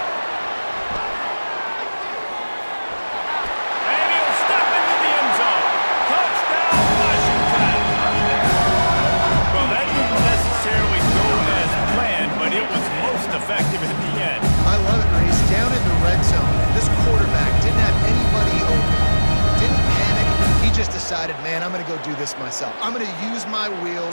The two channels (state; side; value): inverted; both; correlation -1.00